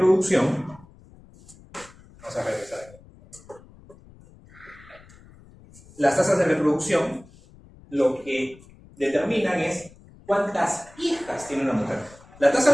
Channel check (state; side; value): noise; left; rumble, 24 dB below the sound